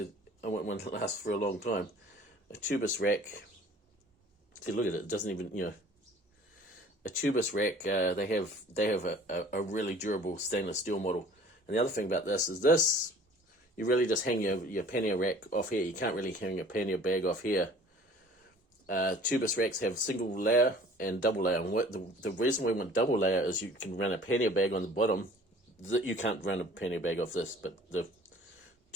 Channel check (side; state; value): both; normal; correlation 0.50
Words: want one that lasts for a long time. A Tubus rack. See, look at it. It doesn't even, a Tubus rack, they have a really durable stainless steel model. And the other thing about this is you really just hang your pannier rack off here. You can't really hang your pannier bag off here. Tubus racks have single layer and double layer. And the reason we want double layer is you can run a pannier bag on the bottom. You can't run a pannier bag off this, but the